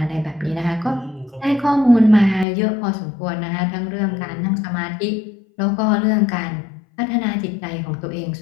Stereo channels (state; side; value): drops out; right; at 2.5 s